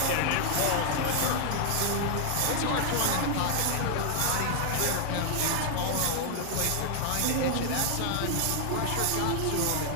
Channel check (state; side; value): different; both; correlation 0.00